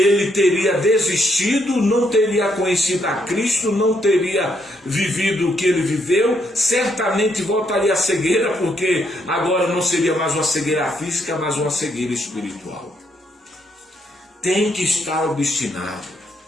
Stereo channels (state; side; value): normal; both; correlation 0.74